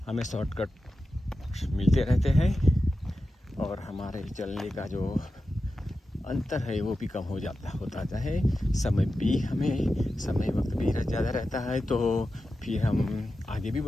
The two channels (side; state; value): both; normal; correlation 0.92